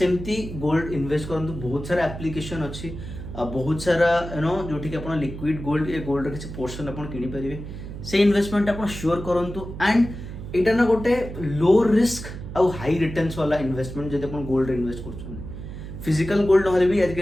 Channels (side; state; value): right; noise; hum, 10 dB below the sound